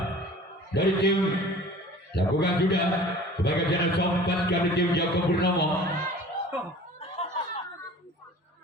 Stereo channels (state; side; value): normal; both; correlation 0.44